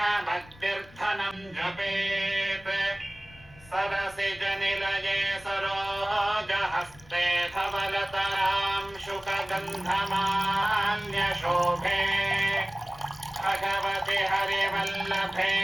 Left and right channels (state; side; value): noise; left; rumble, 23 dB below the sound